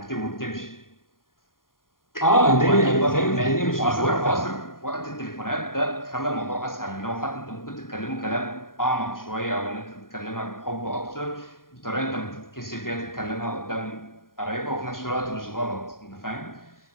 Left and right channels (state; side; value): late; right; 0.91 ms